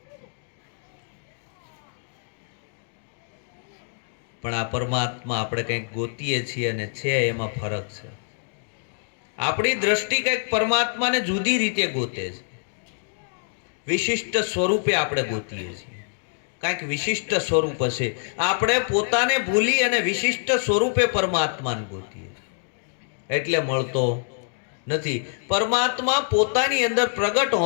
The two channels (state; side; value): silent; right; 61 dB below the other